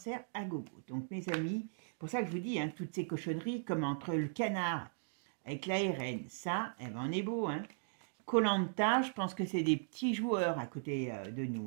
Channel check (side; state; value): left; silent; digital silence